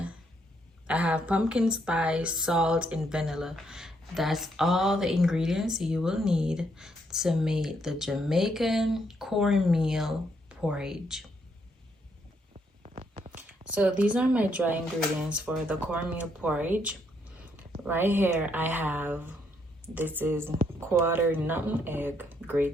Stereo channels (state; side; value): normal; both; correlation 0.74